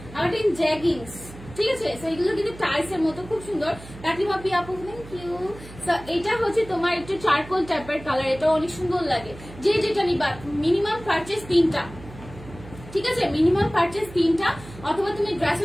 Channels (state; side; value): noise; right; hum, 17 dB below the sound